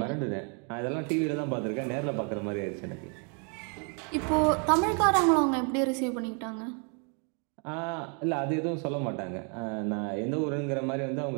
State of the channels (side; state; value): left; quieter; 38.2 dB